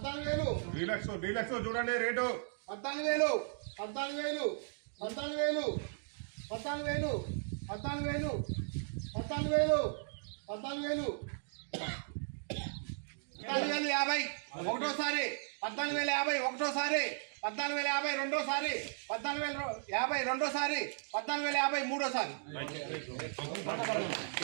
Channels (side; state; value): left; silent; digital silence